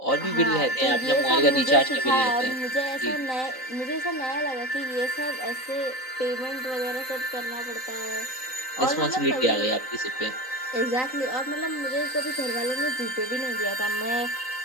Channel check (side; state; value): right; late; 3.9 ms